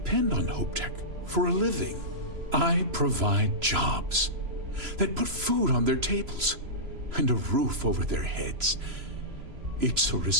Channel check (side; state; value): left; late; 3.0 ms